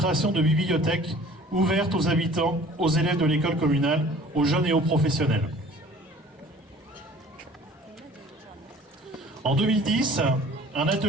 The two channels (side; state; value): both; normal; correlation 0.49